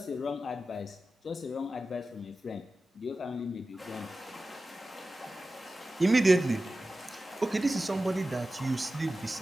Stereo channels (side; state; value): both; normal; correlation 0.94